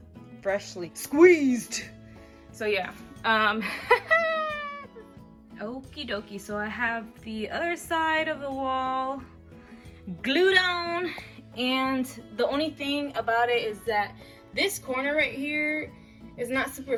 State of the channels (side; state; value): both; identical; correlation 1.00